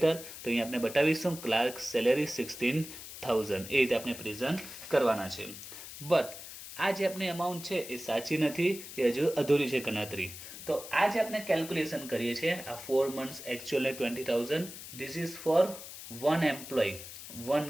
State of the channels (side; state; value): left; noise; hiss, 12 dB below the sound